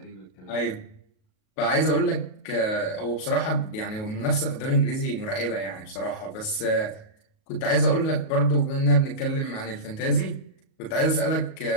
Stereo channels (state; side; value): late; right; 37 ms